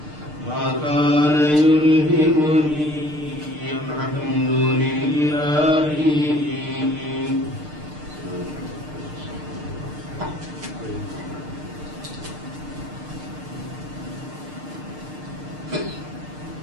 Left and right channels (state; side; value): late; left; 6.6 ms